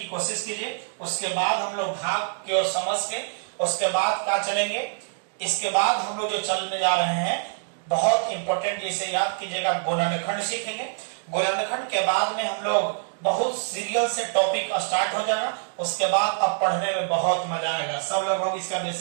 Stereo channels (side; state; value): left; silent; digital silence